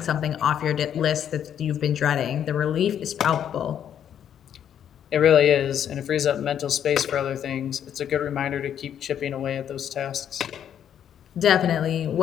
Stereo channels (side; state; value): right; quieter; 9.4 dB